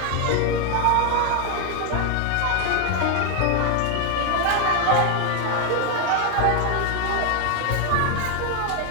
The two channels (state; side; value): different; both; correlation 0.01